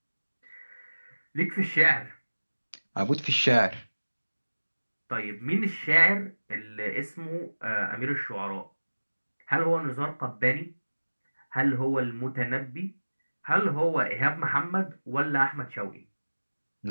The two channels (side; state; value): both; inverted; correlation -1.00